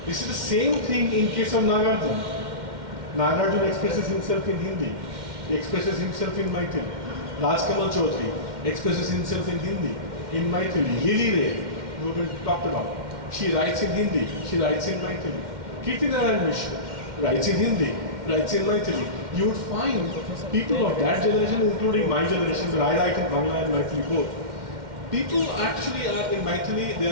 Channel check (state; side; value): late; left; 2.1 ms